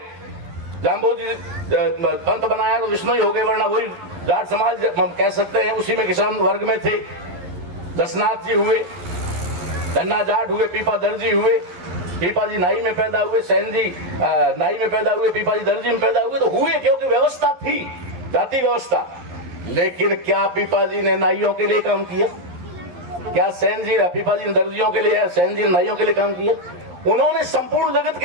जाम्बोजी पंत बनाया तो विष्णु ही हो गए, वरना वही जाट समाज हम कह सकते हैं, उसी में किसान वर्ग में थे। दसनाथ जी हुए, धन्ना जाट हुए, पीपा दर्जी हुए, पीपा जी नाई में पैदा हुए, सैन जी नाई में पैदा हुए, पीपा जी दर्जी में पैदा हुए, तो हुए क्योंकि व्यवस्था थी, जाति व्यवस्था। लेकिन क्या पीपा जी ने नाइयों के लिए काम किया? क्या सैन जी पीपा जी दर्जियों के लिए, सैन जी नाइयों के लिए काम किया? उन्होंने संपूर्ण जगत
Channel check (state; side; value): late; left; 11 ms